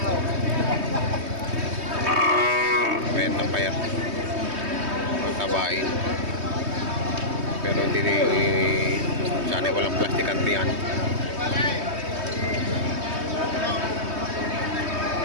Benta pa yan. Ang tabain. Pero hindi sana walang plastic antiyan.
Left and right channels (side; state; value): left; late; 3.2 ms